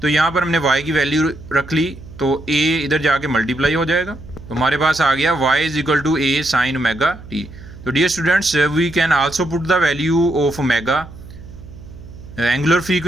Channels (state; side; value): noise; right; hum, 17 dB below the sound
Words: तो यहाँ पर हमने वाई की वैल्यू रख ली, तो ए इधर जाके मल्टीप्लाई हो जाएगा। तो हमारे पास आ गया y is equal to a sine omega t. तो dear students, we can also put the value of omega angular